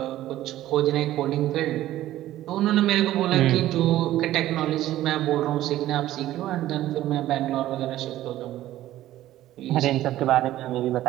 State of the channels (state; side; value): quieter; left; 14.2 dB